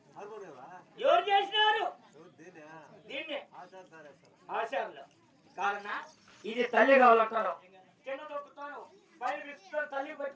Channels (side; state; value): both; identical; correlation 1.00